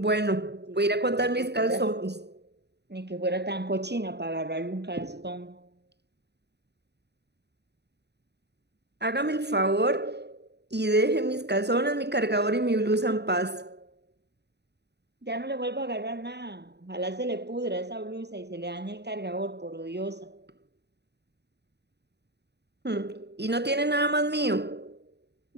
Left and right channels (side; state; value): left; late; 0.49 ms